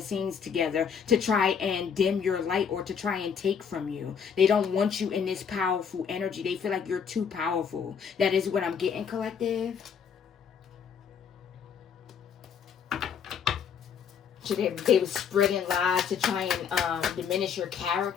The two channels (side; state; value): right; quieter; 7.0 dB